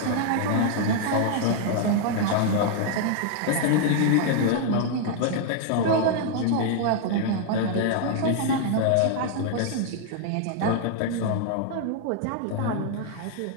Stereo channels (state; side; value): different; both; correlation 0.00